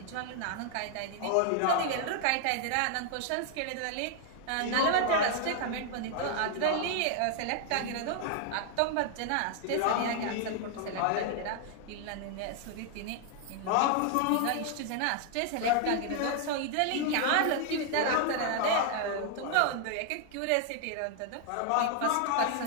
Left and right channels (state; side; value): different; both; correlation 0.00